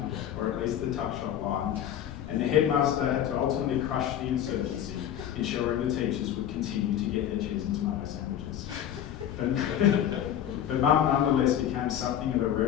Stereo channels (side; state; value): right; quieter; 10.4 dB